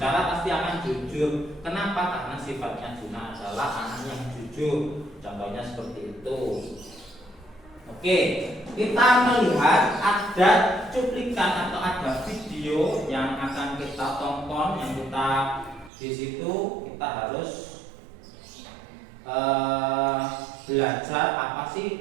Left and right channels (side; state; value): left; drops out; at 15.9 s